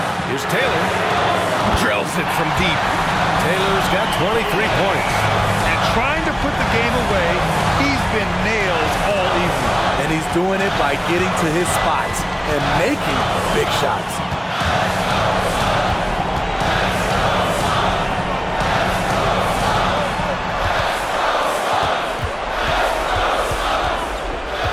here's Taylor. Drills it from deep. Taylor's got 23 points. And trying to put the game away, he's been nailed all evening. And he's doing it by getting to his spots and making big shots.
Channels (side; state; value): both; identical; correlation 1.00